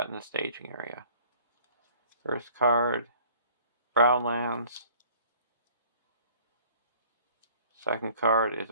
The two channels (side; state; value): both; inverted; correlation -0.54